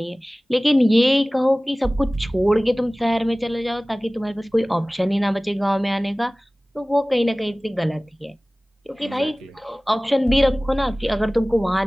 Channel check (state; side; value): normal; both; correlation 0.98